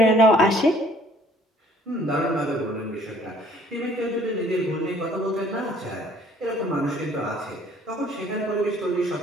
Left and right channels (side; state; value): both; normal; correlation 0.57